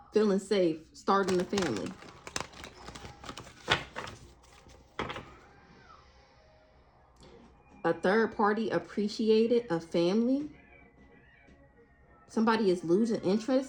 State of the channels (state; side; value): identical; both; correlation 1.00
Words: Feeling safe. Starting a family. A third party appreciated a family. Somebody is losing